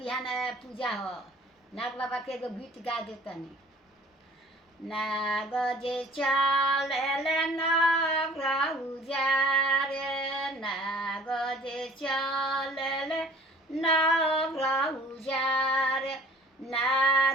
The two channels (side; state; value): both; normal; correlation 0.51